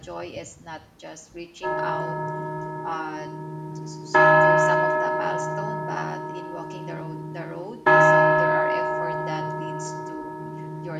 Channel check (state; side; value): identical; both; correlation 1.00